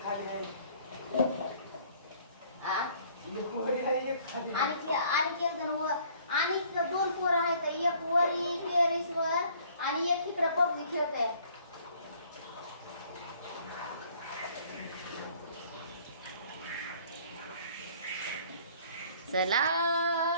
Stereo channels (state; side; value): inverted; both; correlation -0.57